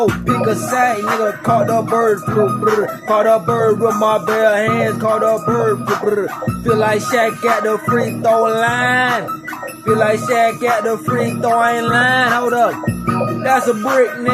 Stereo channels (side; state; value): both; identical; correlation 1.00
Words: Pick a side, nigga, caught the bird flu, brr. Caught a bird with my bare hands, caught a bird, brr. Feel like Shaq at the free throw line. Feel like Shaq at the free throwing line, hold up. That's a brick,